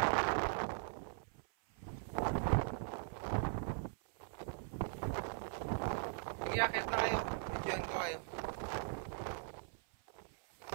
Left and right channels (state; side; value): silent; left; 51 dB below the other